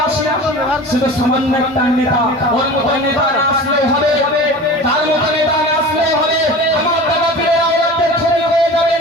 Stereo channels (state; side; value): normal; both; correlation 0.36